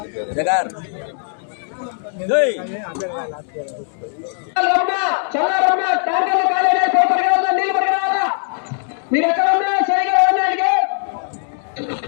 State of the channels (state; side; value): silent; right; 58 dB below the other